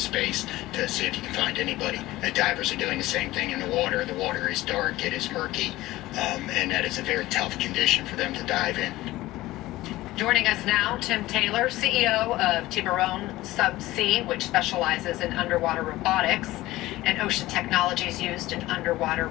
to see if you can find anybody. The divers are doing the same thing in the water. The water is dark, it is murky, and that is a very tough condition for them to dive in. Joining us now, Tim Taylor, CEO of Tiburon Subsea, which specializes in underwater robotics and ocean technologies used in underwater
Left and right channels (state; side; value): quieter; right; 17.4 dB